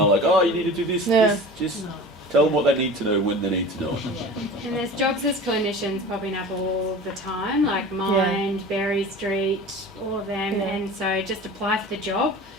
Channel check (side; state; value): both; normal; correlation 0.37